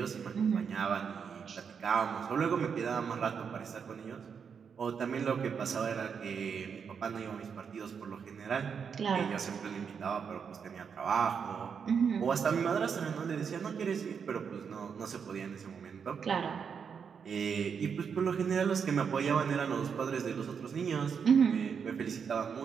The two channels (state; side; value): quieter; left; 6.6 dB